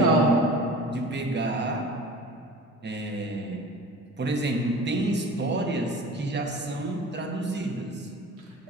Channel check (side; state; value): both; normal; correlation 0.39